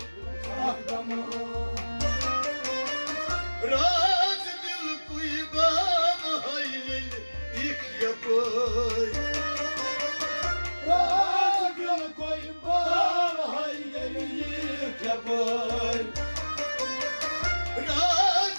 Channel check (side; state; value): both; inverted; correlation -1.00